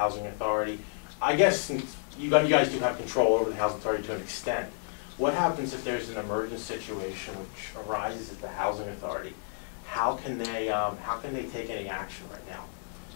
authority, I guess since you guys do have control over the housing authority to an extent, what happens if there's an emergent situation which arises at the housing authority? How can they take any action right now?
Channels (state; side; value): silent; right; digital silence